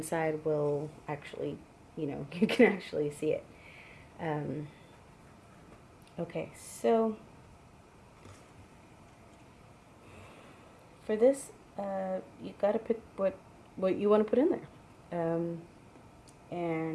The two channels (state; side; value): identical; both; correlation 1.00